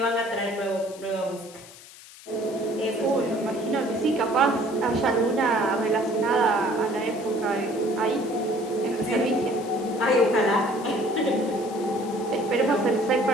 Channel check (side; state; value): left; noise; hiss, 19 dB below the sound